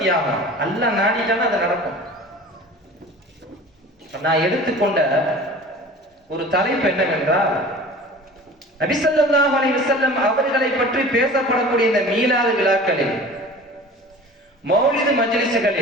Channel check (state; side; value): normal; both; correlation 0.41